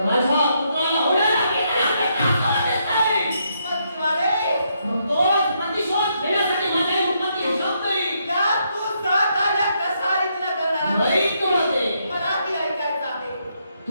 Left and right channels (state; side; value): inverted; both; correlation -0.76